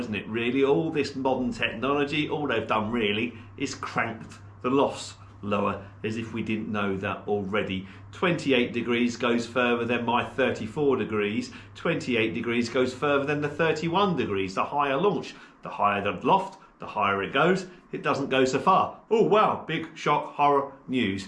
it? Really, all this modern technology, all they've done really is cranked the lofts lower, as if we didn't know that already. 28 degrees goes further than my 34 degrees. 28 degrees goes further than the 31 degrees. The higher launch, the higher the loft, the higher it goes, it doesn't go so far. Oh wow, big shock, horror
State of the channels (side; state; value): both; identical; correlation 1.00